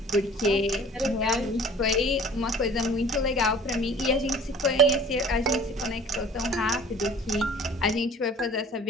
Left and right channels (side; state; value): both; normal; correlation 0.48